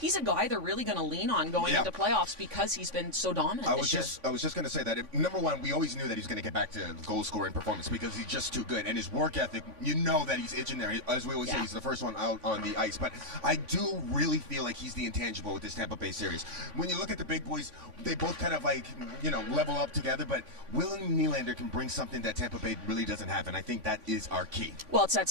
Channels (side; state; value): left; late; 3.5 ms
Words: a guy they're really going to lean on going into playoffs because he's been so dominant I was just going to say that. Number one, we always knew that he's going to get back to the goal-scoring performance because he's just too good, and his work ethic, you know that he's itching there. As we always say, he's the first one out on the ice. But I do really feel like he's the intangible with this Tampa Bay series. When you look at the big boys, they both kind of like, you know, level up together. But Will and Nylander can bring something that Tampa Bay really doesn't have, and I think that is our key. Well, it's that